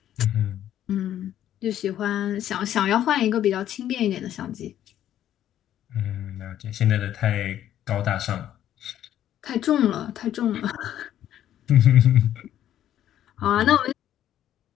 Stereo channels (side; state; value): right; quieter; 11.4 dB